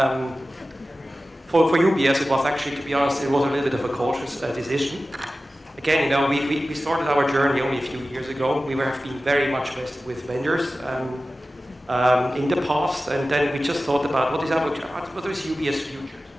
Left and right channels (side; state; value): both; normal; correlation 0.95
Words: for UBS, it was actually, to be honest, it was a little bit of a cautious decision. Again, we started our journey only a few years ago. We have been very much vested with vendors in the past, and then we just thought about what is UBS future.